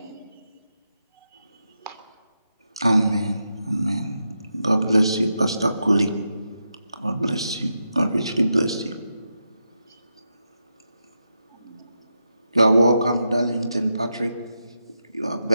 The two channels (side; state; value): both; inverted; correlation -0.86